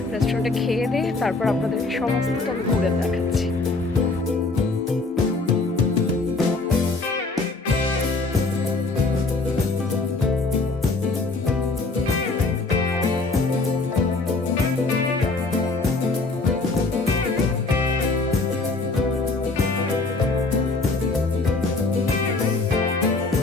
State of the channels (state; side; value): quieter; right; 3.6 dB